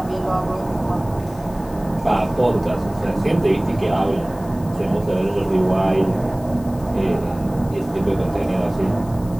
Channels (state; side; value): noise; left; hiss, 23 dB below the sound